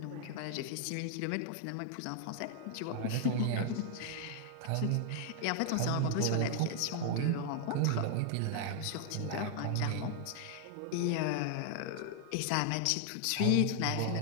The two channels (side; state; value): both; different; correlation 0.00